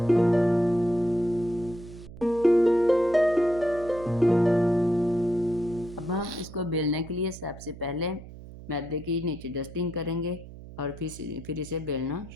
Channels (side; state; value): right; noise; hum, 16 dB below the sound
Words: अब हम इसको बेलने के लिए सबसे पहले मैदे की नीचे डस्टिंग करेंगे, और फिर इसे बेलना